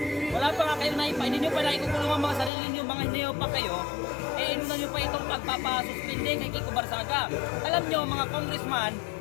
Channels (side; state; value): right; drops out; at 2.5 s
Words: Wala pa nga kayong naipa. Hindi nyo pa naikukulong ang mga sarili nyo, mga hindi pa kayo. Inuna nyo pa itong pagpapasuspindi kay Kiko Barsaga. Alam nyo, mga congressman